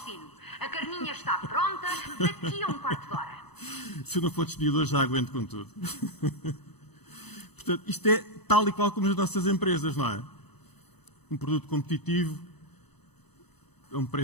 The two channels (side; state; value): right; late; 0.99 ms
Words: A carninha está pronta daqui a um quarto de hora. Se eu não for despedido hoje, já aguento com tudo. Portanto, isto é tal e qual como as nossas empresas, não é? Um produto competitivo, a um